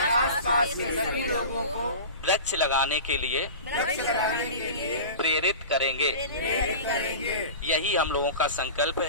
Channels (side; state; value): both; inverted; correlation -0.34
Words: वृक्ष लगाने के लिए प्रेरित करेंगे। यही हम लोगों का संकल्प